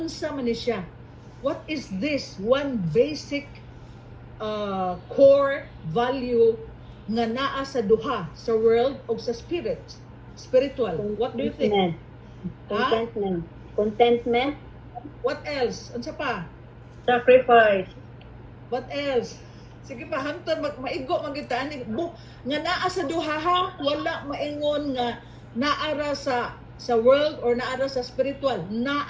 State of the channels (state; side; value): identical; both; correlation 1.00